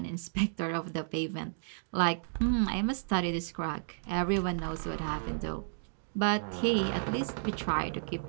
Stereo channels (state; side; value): silent; left; digital silence